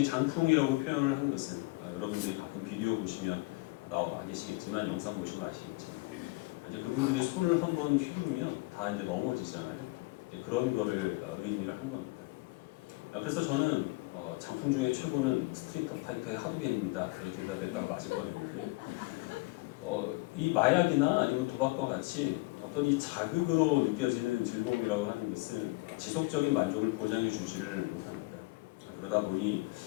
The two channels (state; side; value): quieter; right; 23.7 dB